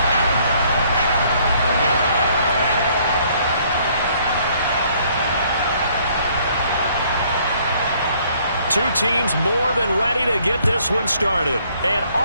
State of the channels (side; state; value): both; inverted; correlation -0.63